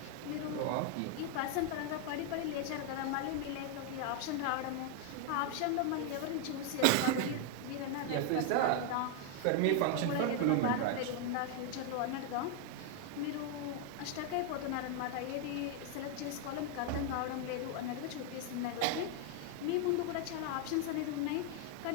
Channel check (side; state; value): both; different; correlation 0.00